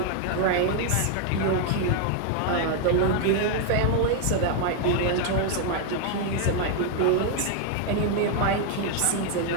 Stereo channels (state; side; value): different; both; correlation 0.00